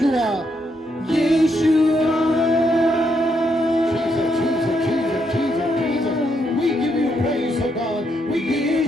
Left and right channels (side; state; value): both; normal; correlation 0.77